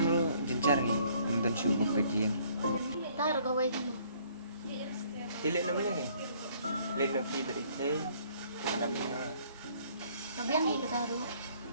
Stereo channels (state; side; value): inverted; both; correlation -0.61